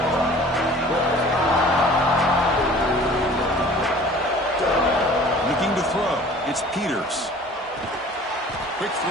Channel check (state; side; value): normal; both; correlation 0.47